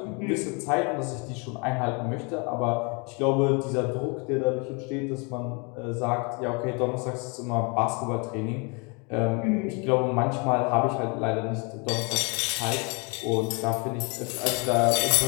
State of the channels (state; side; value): quieter; right; 32.2 dB